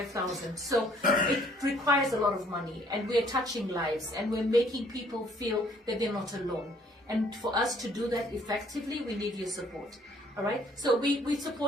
So it requires a lot of money, and we're touching lives, and we're making people feel that they're not alone. And for us to do that effectively, we need your support. All right, so we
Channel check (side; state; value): both; normal; correlation 0.61